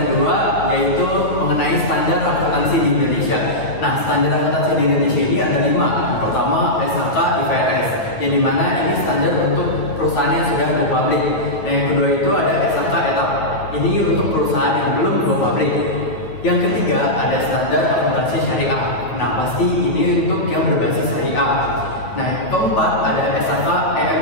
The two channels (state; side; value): late; right; 9.5 ms